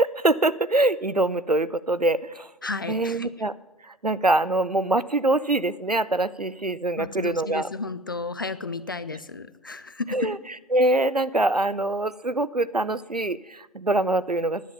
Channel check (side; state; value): both; normal; correlation 0.48